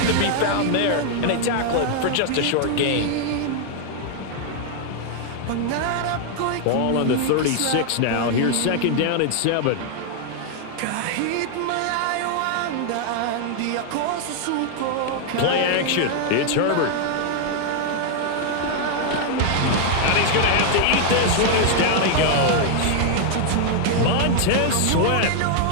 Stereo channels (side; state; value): both; different; correlation 0.00